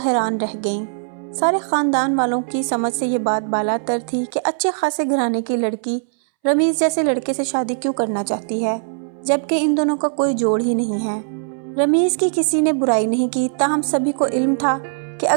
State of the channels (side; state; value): left; silent; 65 dB below the other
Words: रह गईं। सारे ख़ानदान वालों की समझ से ये बात बालातर थी कि अच्छे खासे घराने की लड़की रमीज़ जैसे लड़के से शादी क्यों करना चाहती है, जबकि इन दोनों का कोई जोड़ ही नहीं है। रमीज़ की किसी ने बुराई नहीं की, ताहम सभी को इल्म था कि